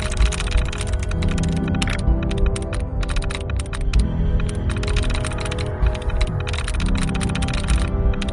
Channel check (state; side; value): identical; both; correlation 1.00